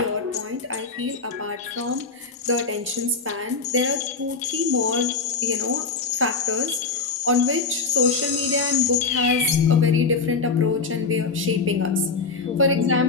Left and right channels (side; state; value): right; quieter; 4.3 dB